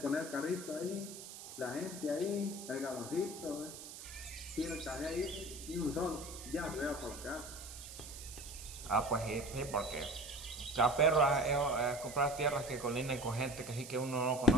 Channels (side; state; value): right; noise; hiss, 12 dB below the sound